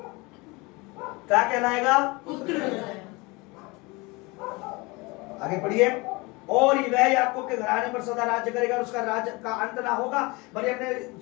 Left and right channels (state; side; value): quieter; right; 25.5 dB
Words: क्या कहलाएगा? आगे पढ़िए। और वह याकूब के घराने पर सदा राज्य करेगा, उसका राज्य का अंत ना होगा। मरियम ने